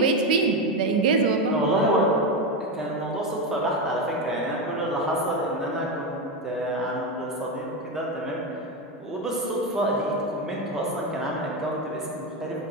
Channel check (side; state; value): both; normal; correlation 0.12